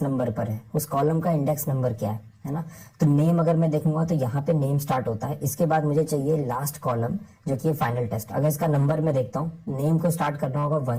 नंबर पर है, उस कॉलम का इंडेक्स नंबर क्या है ना। तो नेम अगर मैं देखूंगा तो यहाँ पे नेम स्टार्ट होता है। इसके बाद मुझे चाहिए लास्ट कॉलम जो कि फाइनल टेस्ट। अगर इसका नंबर मैं देखता हूँ, नेम को स्टार्ट करना होगा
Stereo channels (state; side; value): identical; both; correlation 1.00